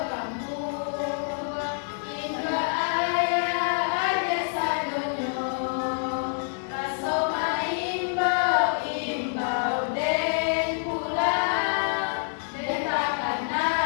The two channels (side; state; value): right; silent; 60 dB below the other